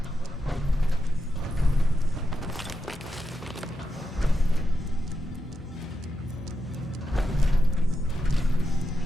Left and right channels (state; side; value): normal; both; correlation 0.86